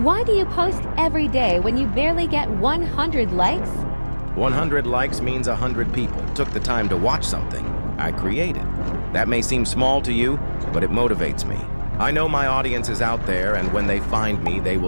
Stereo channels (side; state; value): both; inverted; correlation -1.00